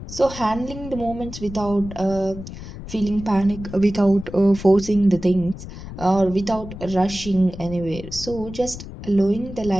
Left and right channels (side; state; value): left; noise; rumble, 12 dB below the sound